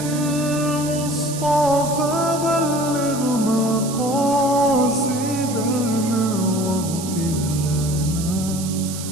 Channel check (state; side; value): noise; right; hiss, 10 dB below the sound